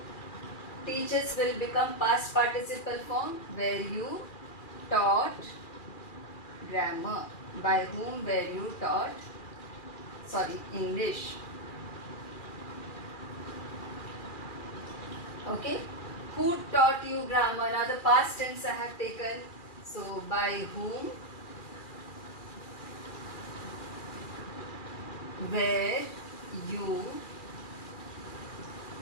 Teaches will become past participle form, where you taught grammar. By whom, where you taught, English. Okay. Who taught you grammar? Now the past tense I have taken. So by whom, where you,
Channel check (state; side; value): late; right; 2.4 ms